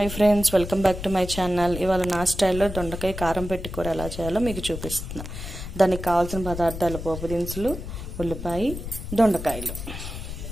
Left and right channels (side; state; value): left; noise; rumble, 8 dB below the sound